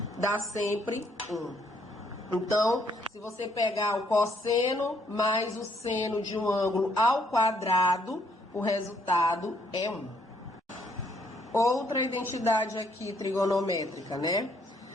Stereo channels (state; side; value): normal; both; correlation 0.69